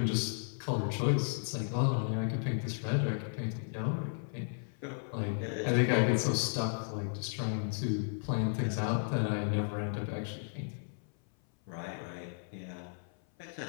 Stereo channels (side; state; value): right; silent; 55 dB below the other